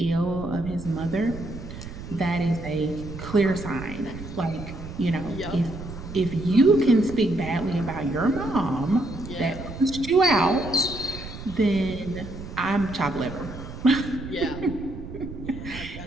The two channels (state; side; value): noise; right; rumble, 11 dB below the sound